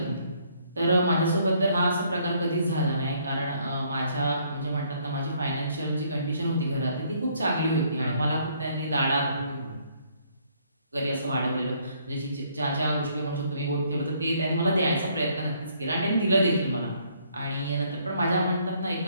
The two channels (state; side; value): inverted; both; correlation -0.66